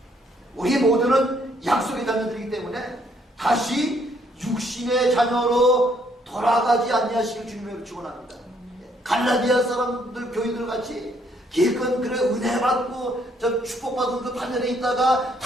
우리 모두는 약속의 자녀들이기 때문에 다시 육신의 자녀로 돌아가지 아니하시길 주님의 축원합니다. 갈라디아 사람들 교인들 같이 기껏 그래 은혜 받고 저 축복받은 그 반열에 있다가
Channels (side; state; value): both; normal; correlation 0.68